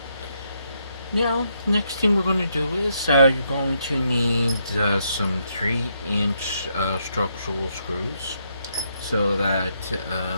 Now, next thing we're going to do is you're going to need some 3-inch structural screws so that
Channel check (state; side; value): inverted; both; correlation -0.77